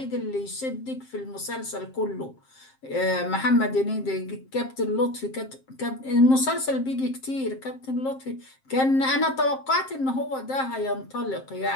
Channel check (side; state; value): right; late; 7.6 ms